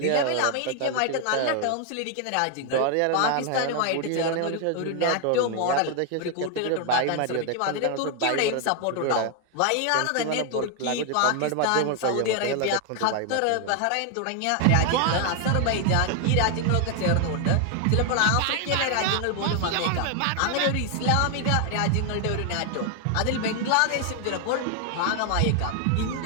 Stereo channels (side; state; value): both; different; correlation 0.00